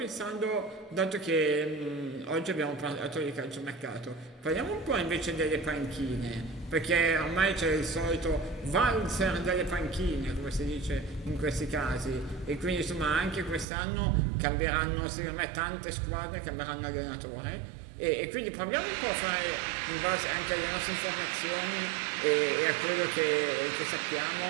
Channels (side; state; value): left; drops out; at 13.7 s